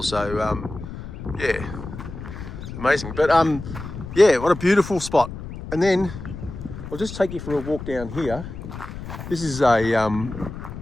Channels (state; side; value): noise; left; rumble, 10 dB below the sound